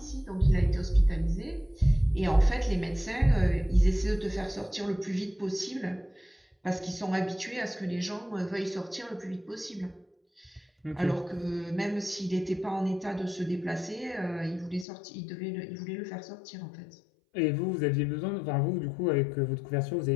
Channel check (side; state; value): right; drops out; at 14.9 s